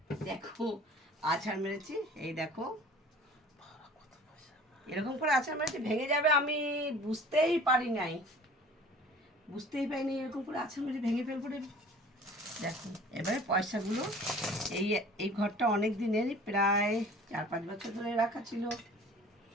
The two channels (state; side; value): normal; both; correlation 0.46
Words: দেখো আছাড় মেরেছি, এই দেখো এরকম করে আছাড় মেরেছি, ভেঙে যাবে আমি বুঝতেই পারিনি, এরকম করে আছাড় মেরে ভেঙে ফেলবো রে। দেখো এবারে পয়সাগুলো, এই এই ঘরটা অনেক দিনেরই, প্রায় 4-5 বছর ধরে রাখা ছিল।